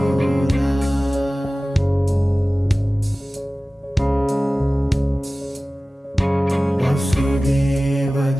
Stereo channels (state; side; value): normal; both; correlation 0.97